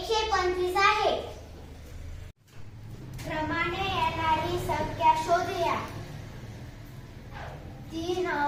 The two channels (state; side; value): identical; both; correlation 1.00